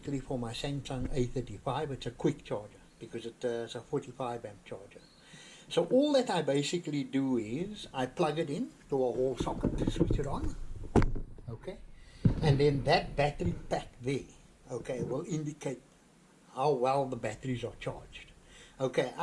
for my Samsung A35. It's a quick charger because it's a 45 amp charger. So all that I basically do is I plug it in to a wall socket, switch it on. Okay, and then that battery pack there, okay, will indicate how well the batteries are charged. Okay,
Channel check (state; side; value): identical; both; correlation 1.00